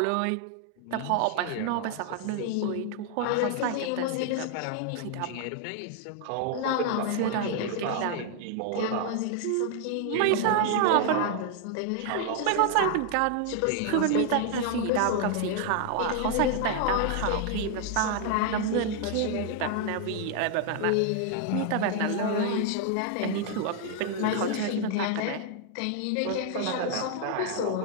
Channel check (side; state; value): both; different; correlation 0.00